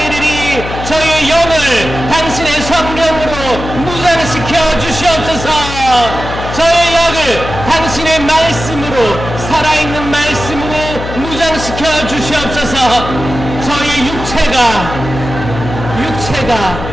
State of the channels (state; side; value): noise; left; hum, 8 dB below the sound